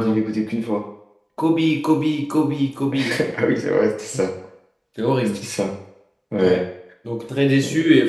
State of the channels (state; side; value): identical; both; correlation 1.00